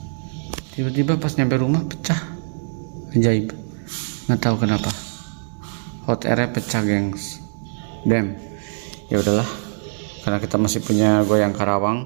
Tiba-tiba pas nyampe rumah pecah. Ajaib. Nggak tahu kenapa. Hot airnya pecah, gengs. Damn. Ya udahlah. Karena kita masih punya goyang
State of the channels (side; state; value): left; silent; digital silence